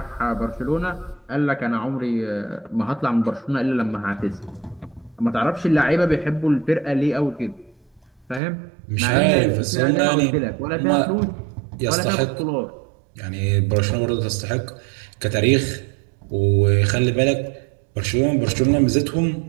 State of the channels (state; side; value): drops out; left; at 8.4 s